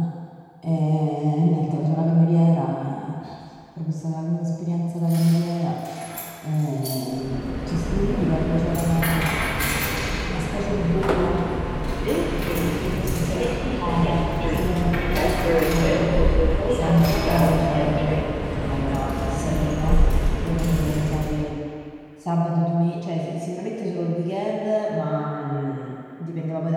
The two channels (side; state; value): both; identical; correlation 1.00